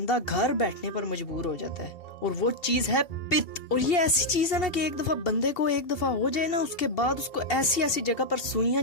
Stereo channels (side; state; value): right; late; 2.7 ms